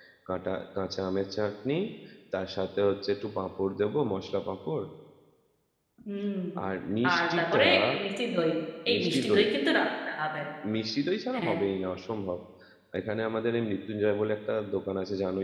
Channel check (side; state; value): both; identical; correlation 1.00